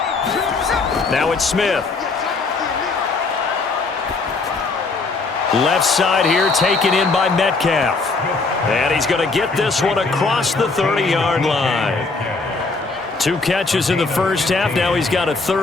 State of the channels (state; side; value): quieter; right; 3.9 dB